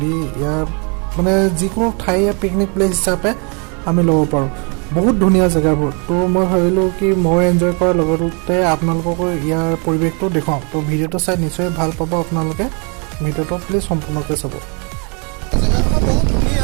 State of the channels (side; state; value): left; quieter; 34.7 dB